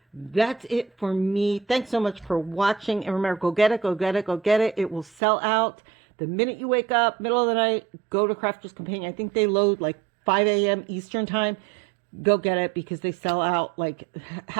that's it for me. Thanks so much for watching. And remember, go get it, go get it, go get it. It will sell out the minute you wake up, middle of the night, go to Crafter's Companion. I think they load like 5 a.m. Eastern time. Go get it, because they sell out like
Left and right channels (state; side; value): drops out; left; at 5.2 s